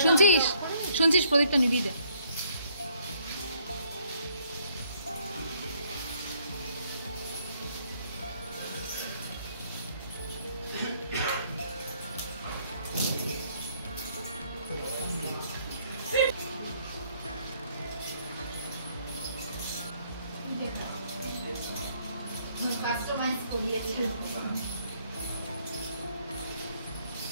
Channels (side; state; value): both; inverted; correlation -0.67